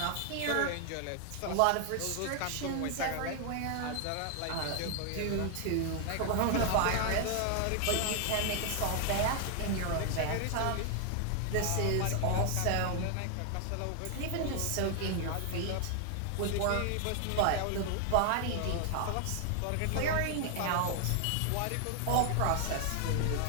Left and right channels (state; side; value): different; both; correlation 0.00